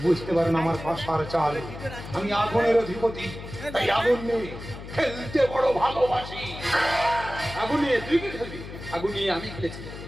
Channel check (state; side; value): noise; left; hum, 12 dB below the sound